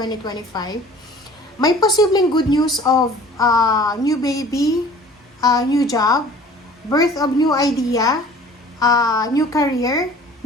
may posibleng good news of new baby, new job, birth of new idea, new career,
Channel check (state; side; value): normal; both; correlation 0.48